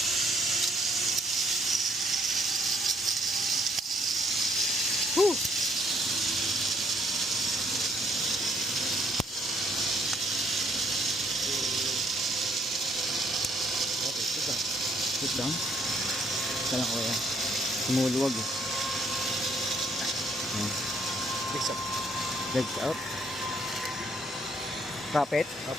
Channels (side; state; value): both; normal; correlation 0.67